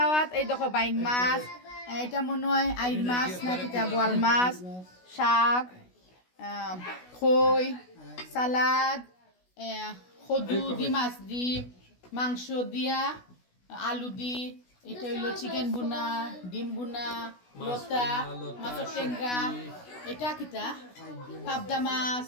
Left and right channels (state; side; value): late; right; 16 ms